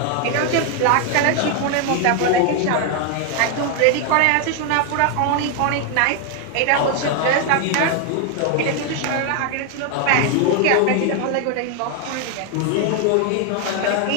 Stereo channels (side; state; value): both; different; correlation 0.01